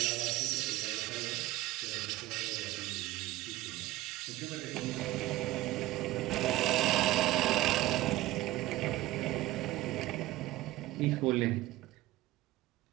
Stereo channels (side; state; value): left; quieter; 16.6 dB